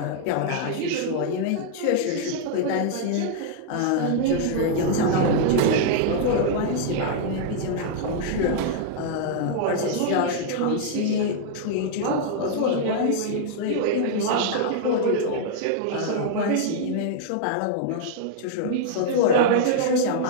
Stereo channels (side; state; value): both; different; correlation -0.01